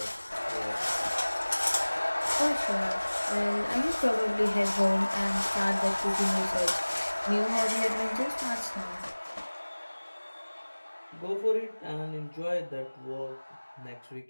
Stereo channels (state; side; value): inverted; both; correlation -1.00